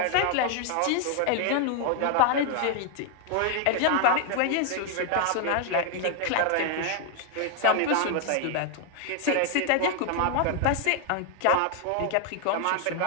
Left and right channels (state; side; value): different; both; correlation 0.00